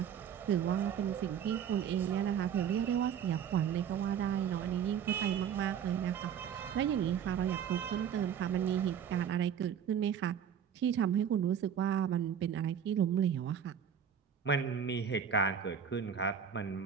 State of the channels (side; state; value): left; quieter; 8.2 dB